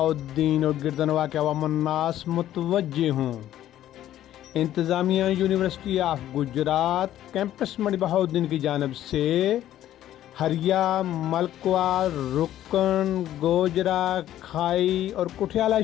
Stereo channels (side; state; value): right; quieter; 12.5 dB